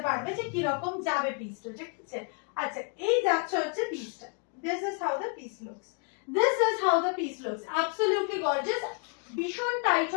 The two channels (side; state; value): right; quieter; 38.2 dB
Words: পারবে যে কিরকম যাবে পিসটা। ঠিক আছে, আচ্ছা এই যাচ্ছে হচ্ছে পিসটা, this is how the piece looks. This is how the piece looks. Absolutely gorgeous. ভীষণ টাইট